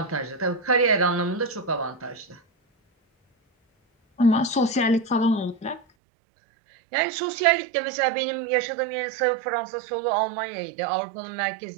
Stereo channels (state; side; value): drops out; left; at 5.9 s